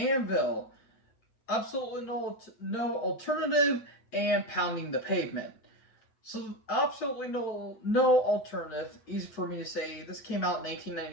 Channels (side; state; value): right; late; 7.9 ms